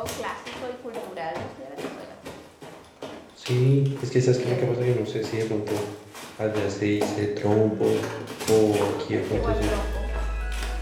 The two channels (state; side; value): identical; both; correlation 1.00